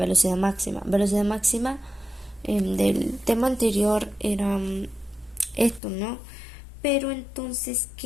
máxima. Velocidad máxima del tema anterior era esto, ¿no? Pero entonces,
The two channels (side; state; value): right; drops out; at 5.8 s